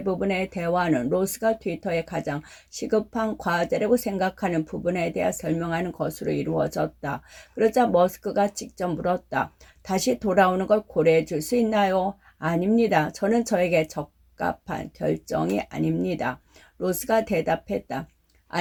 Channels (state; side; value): identical; both; correlation 1.00